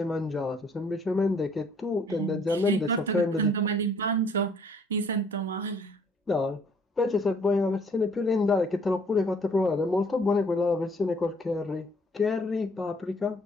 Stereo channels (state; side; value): normal; both; correlation 0.61